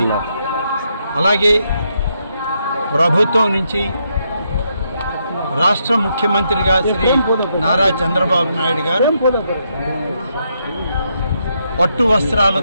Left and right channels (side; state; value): both; inverted; correlation -0.79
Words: అలాగే ప్రభుత్వం నుంచి రాష్ట్ర ముఖ్యమంత్రిగా శ్రీ నారా చంద్రబాబు నాయుడు గారు పట్టు